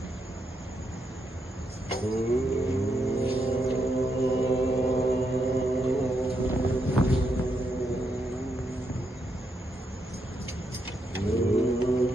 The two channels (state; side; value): normal; both; correlation 0.81